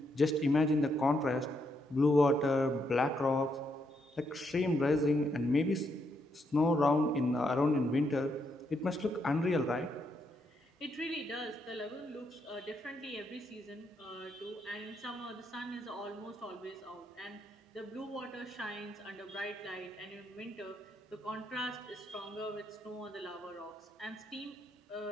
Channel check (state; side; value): normal; both; correlation 0.78